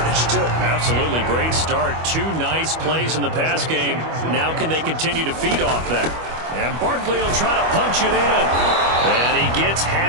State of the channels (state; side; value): late; left; 25 ms